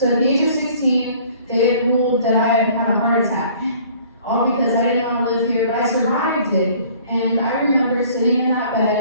at the age of 16, they had ruled that I had had a heart attack. All because I didn't want to live here, but I survived it. And I remember sitting in that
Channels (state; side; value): inverted; both; correlation -0.53